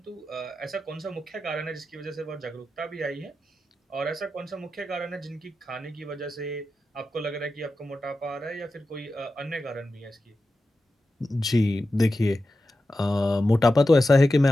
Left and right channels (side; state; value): both; normal; correlation 0.92